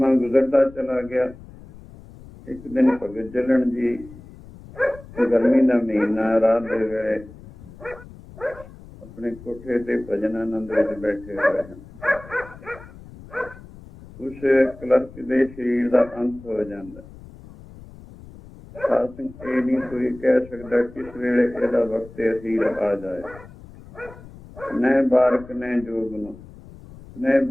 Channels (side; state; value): left; noise; rumble, 19 dB below the sound